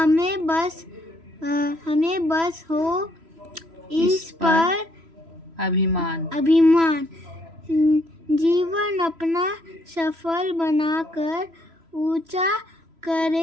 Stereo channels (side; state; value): left; late; 3.0 ms